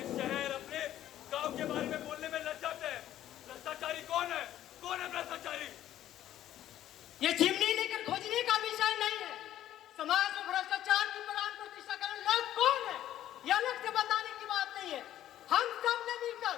शहर, अपने गांव के बारे में बोलने में लज्जाते हैं। भ्रष्टाचारी कौन है? कौन है भ्रष्टाचारी? ये चिमनी लेकर खोजने का विषय नहीं है। समाज में भ्रष्टाचार की प्राण प्रतिष्ठा करने लोग कौन है, यह अलग से बताने की बात नहीं है। हम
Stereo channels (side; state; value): right; quieter; 12.4 dB